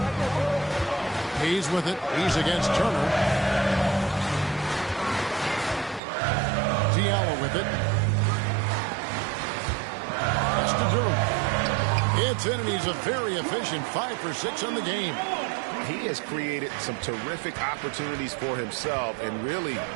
Hayes with it. He's against Turner. Diallo with it. That's to Durham. It's in, and he's a very efficient 5 for 6 on the game. He has created some terrific opportunities for himself and really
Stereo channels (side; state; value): left; drops out; at 6.0 s